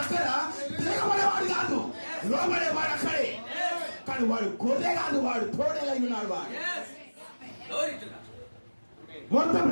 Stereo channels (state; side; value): inverted; both; correlation -1.00